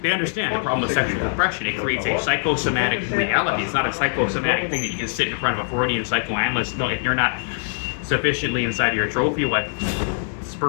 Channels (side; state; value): right; silent; digital silence